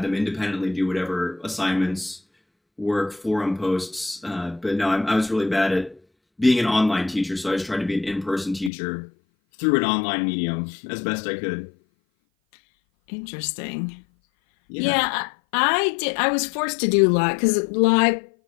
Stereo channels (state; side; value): drops out; right; at 8.7 s